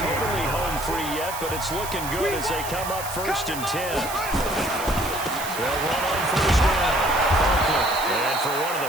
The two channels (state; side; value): noise; right; hiss, 9 dB below the sound